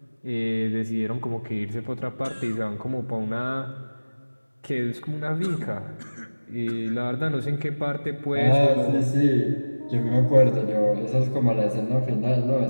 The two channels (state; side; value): inverted; both; correlation -1.00